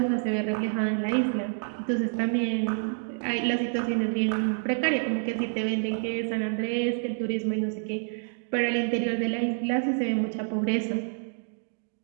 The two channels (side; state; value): left; silent; digital silence